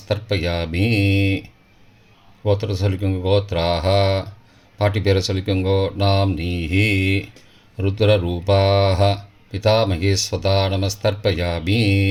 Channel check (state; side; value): identical; both; correlation 1.00